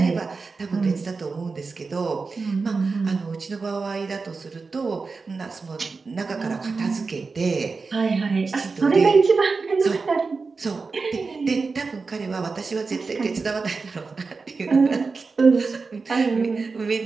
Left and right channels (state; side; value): quieter; left; 4.4 dB